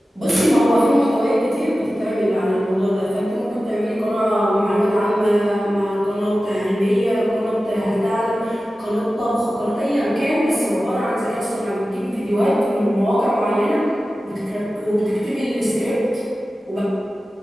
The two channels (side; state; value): both; normal; correlation 0.95